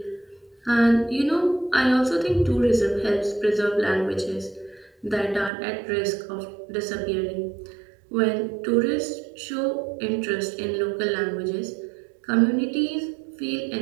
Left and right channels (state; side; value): drops out; left; at 5.5 s